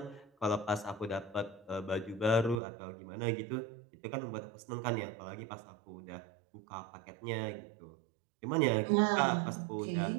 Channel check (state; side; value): drops out; left; at 2.6 s